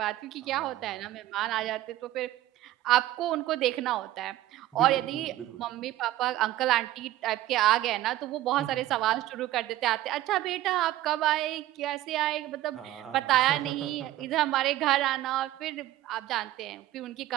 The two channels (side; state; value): left; quieter; 14.8 dB